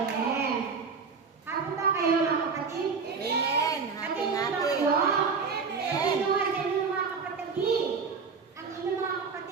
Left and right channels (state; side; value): quieter; left; 5.2 dB